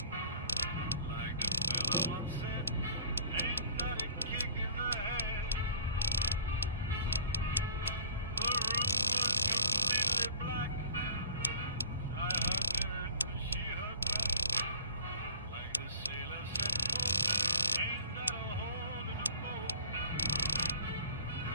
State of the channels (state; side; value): inverted; both; correlation -0.49